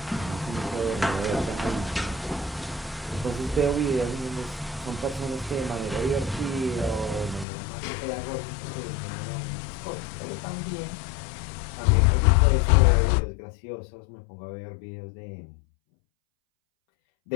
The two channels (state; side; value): drops out; right; at 7.5 s